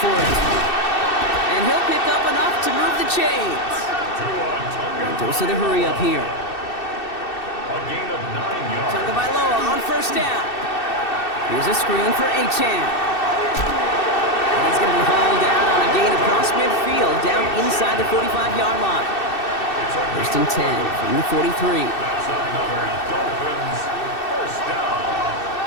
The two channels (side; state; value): right; late; 2.6 ms